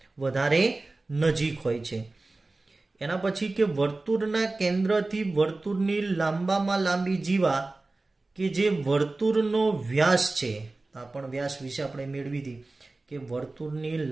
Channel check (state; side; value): quieter; left; 3.2 dB